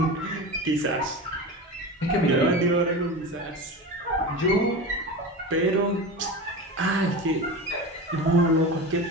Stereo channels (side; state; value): both; normal; correlation 0.27